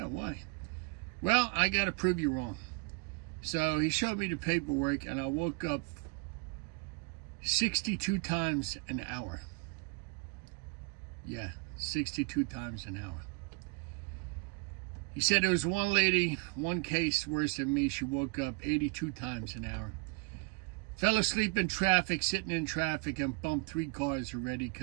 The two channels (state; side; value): quieter; left; 30.4 dB